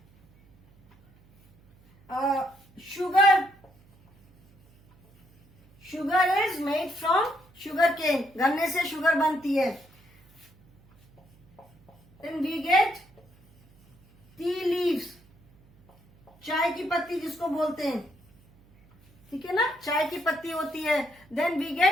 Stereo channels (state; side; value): noise; right; hum, 29 dB below the sound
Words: sugar. Sugar is made from sugar cane. गन्ने से शुगर बनती है. Then we get tea leaves. चाय की पत्ती जिसको बोलते हैं, ठीक है ना, चाय की पत्ती होती है. Then we